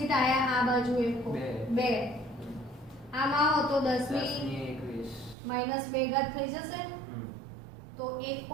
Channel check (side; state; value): left; drops out; at 5.4 s